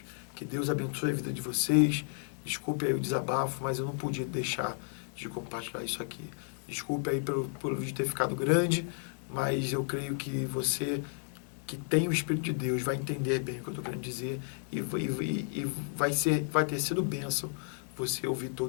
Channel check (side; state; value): right; silent; 56 dB below the other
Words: Que Deus abençoe a vida de vocês. Desculpe aí o desabafo, mas eu não podia deixar de compartilhar isso aqui. Desculpe aí pelo vídeo ter ficado grande, mas eu creio que você que tem o Espírito de Deus vai entender bem o que eu estou querendo dizer e vai ter sido bênção você ouvir